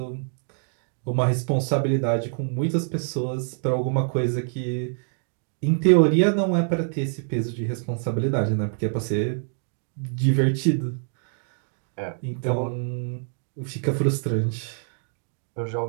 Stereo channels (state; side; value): silent; left; digital silence